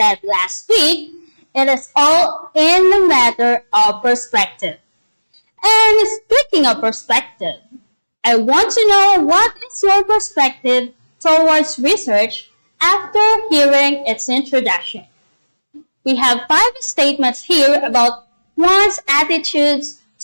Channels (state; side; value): inverted; both; correlation -1.00